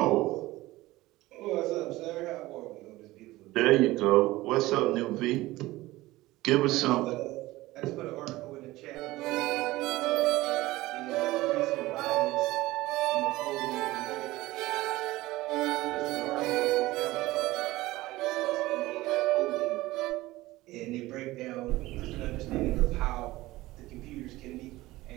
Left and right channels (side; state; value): left; quieter; 18.3 dB